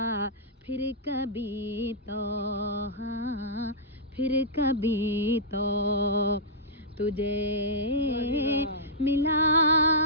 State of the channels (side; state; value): both; normal; correlation -0.13